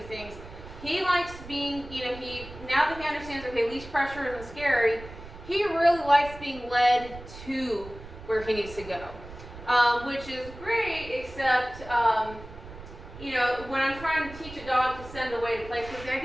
He likes being, now that he understands, okay, leash pressure isn't scary, he really likes being led to where he needs to go, which is great, except, when I'm trying to teach a dog to send away to place, because the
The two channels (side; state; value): right; noise; rumble, 15 dB below the sound